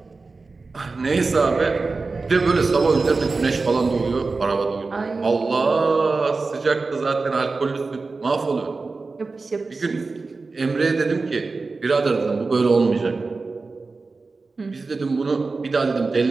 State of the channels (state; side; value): quieter; left; 3.9 dB